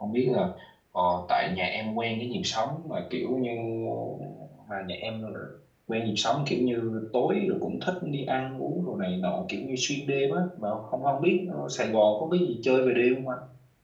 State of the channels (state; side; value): identical; both; correlation 1.00